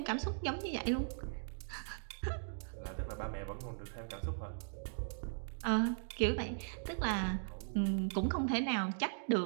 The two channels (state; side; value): silent; left; digital silence